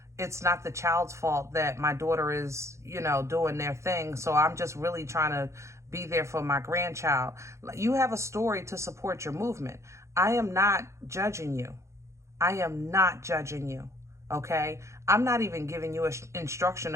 it's not the child's fault that my daughter is, you know, doing their thing. So I'm just really trying to be there for my grandchild. You have a story to support your movement. I am not judging you. I am not judging you, okay? I'm not even giving you an instruction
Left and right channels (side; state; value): left; late; 0.14 ms